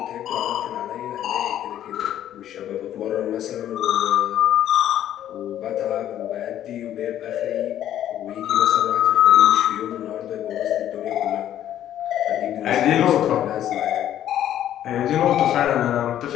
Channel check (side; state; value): right; quieter; 11.4 dB